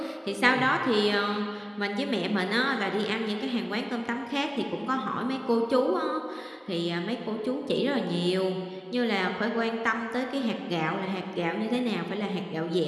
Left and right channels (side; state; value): both; identical; correlation 1.00